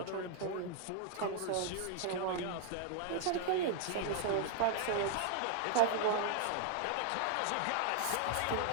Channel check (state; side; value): different; both; correlation 0.00